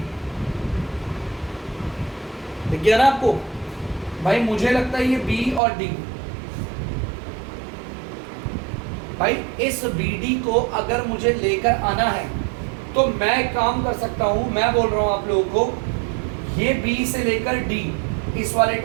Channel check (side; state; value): left; drops out; at 5.6 s